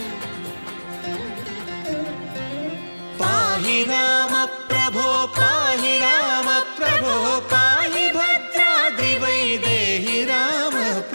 పాహి రామ ప్రభో పాహి రామ ప్రభో పాహి భద్రాద్రి వైదేహి రామ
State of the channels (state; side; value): inverted; both; correlation -1.00